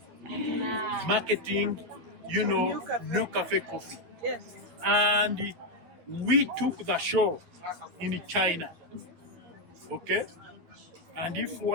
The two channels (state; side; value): late; left; 12 ms